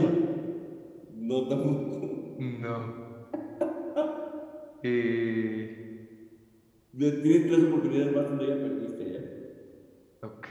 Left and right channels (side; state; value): both; identical; correlation 1.00